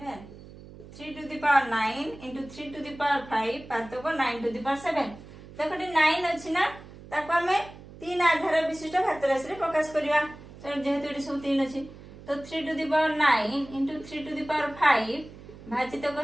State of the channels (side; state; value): right; noise; hum, 18 dB below the sound